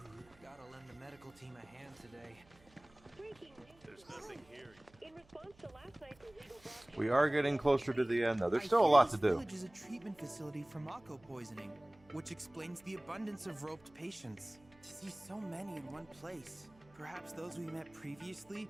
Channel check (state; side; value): noise; right; hum, 28 dB below the sound